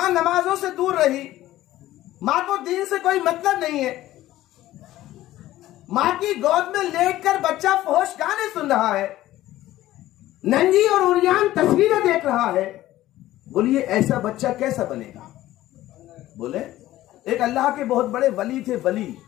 نمازوں سے دور رہی، ماں کو دین سے کوئی مطلب نہیں ہے، ماں کی گود میں لیٹ کر بچہ فحش گانے سن رہا ہے، ننگی اور عریان تصویریں دیکھ رہا ہے۔ بولیے ایسا بچہ کیسا بنے گا؟ بولے، ایک اللہ کے بہت بڑے ولی تھے، ولی،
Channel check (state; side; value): quieter; right; 15.1 dB